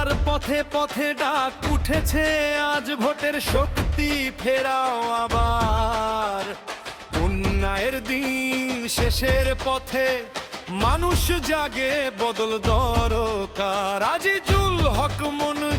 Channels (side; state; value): both; identical; correlation 1.00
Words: পথে পথে ডাক উঠেছে, আজ ভোটের শক্তি ফেরাও আবার। উন্নয়নের দিন শেষের পথে, মানুষ জাগে, বদল দরকার। আজিজুল হক